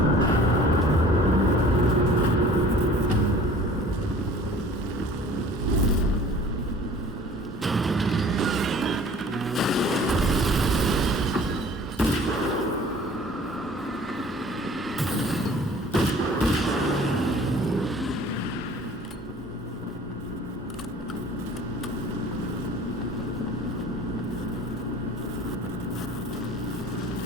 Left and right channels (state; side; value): normal; both; correlation 0.48